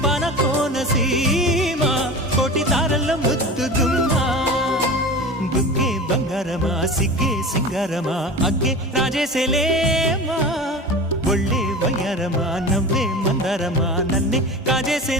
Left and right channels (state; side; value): normal; both; correlation 0.32